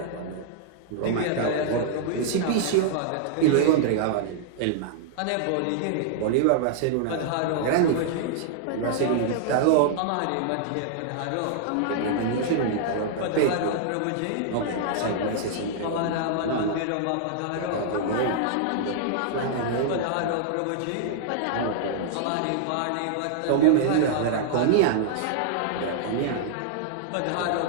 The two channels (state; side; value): different; both; correlation -0.01